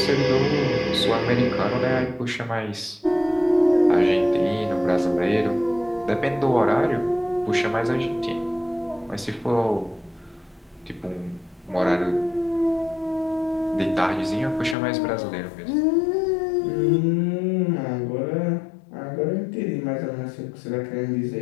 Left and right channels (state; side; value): drops out; right; at 14.8 s